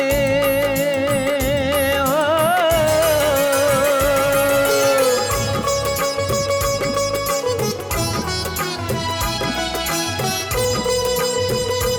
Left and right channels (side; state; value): both; identical; correlation 1.00